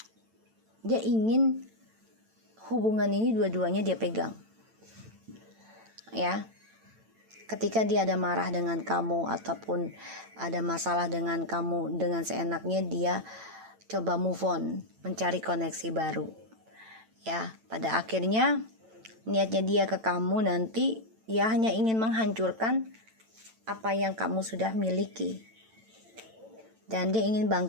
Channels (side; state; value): left; late; 9.0 ms